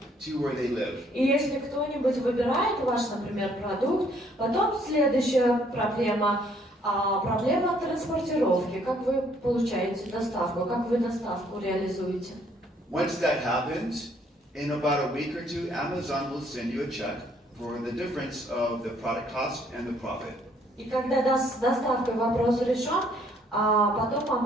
to where they live. И если кто-нибудь выбирает ваш, например, продукт, потом следующая проблема транспортировки. Как вы получаете доставку, как вы доставку реализуете? Once that happens, in about a week or two, Amazon will send you a check for the difference of the product cost and the profit. И когда с доставкой вопрос решен, потом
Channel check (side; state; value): both; normal; correlation 0.65